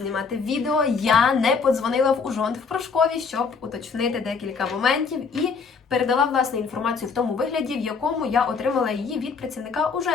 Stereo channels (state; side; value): quieter; right; 5.2 dB